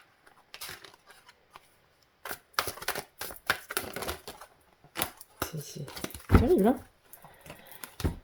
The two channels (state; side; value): identical; both; correlation 1.00